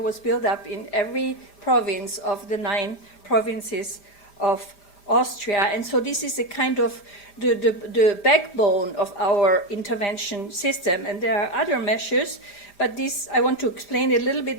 built up in every province of the 9 provinces of Austria. And so this is a kind of the backbone of our intervention system. And there are other measures, but this, I want to explain a little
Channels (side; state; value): right; late; 5.0 ms